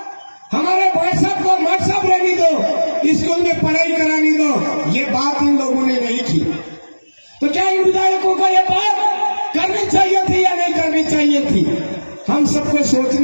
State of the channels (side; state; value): both; inverted; correlation -1.00